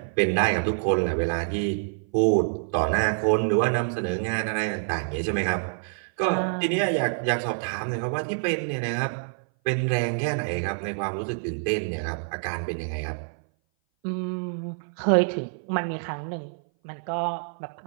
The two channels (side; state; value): left; silent; 58 dB below the other